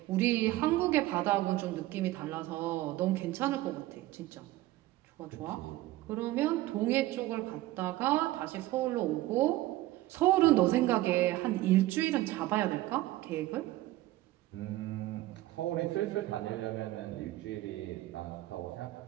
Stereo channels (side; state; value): left; quieter; 16.8 dB